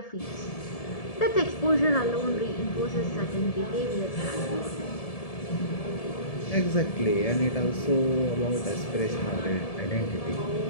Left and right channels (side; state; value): right; late; 1.7 ms